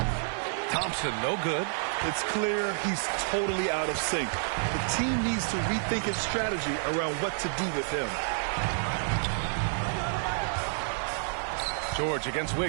Thompson, no good. It's clear he's totally out of sync. The team needs to rethink its strategy around what to do with him. George against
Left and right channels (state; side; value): silent; left; 58 dB below the other